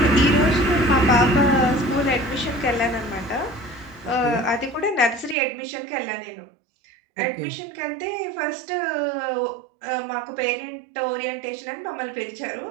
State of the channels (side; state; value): left; drops out; at 5.4 s